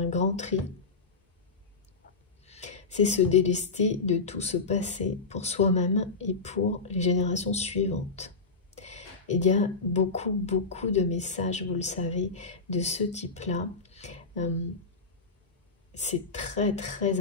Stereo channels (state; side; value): quieter; right; 4.2 dB